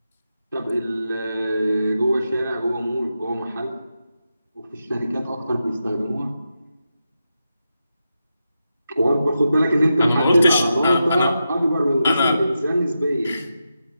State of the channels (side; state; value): both; inverted; correlation -0.88